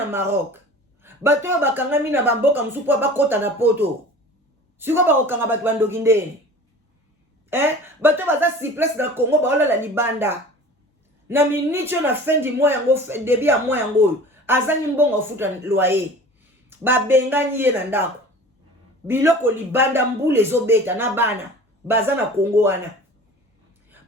Maroc. Bato bakanga bina bamboka msupo bakota na poto. Siko ba okanga batu bandoki ndene. Bato baza si place na Congo ba la libanda. Na minicho na fin du mois yango début ya mois yango. Azani mbongo futa loyer. Ba bengani ye na ndako. Biloko libanda mbule zobeta na bana. Baza na Congo wana.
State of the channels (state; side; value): normal; both; correlation 0.41